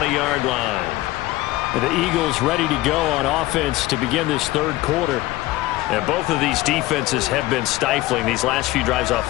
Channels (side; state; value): right; quieter; 17.9 dB